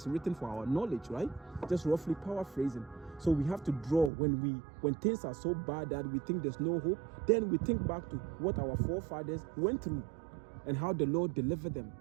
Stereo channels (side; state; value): left; drops out; at 4.1 s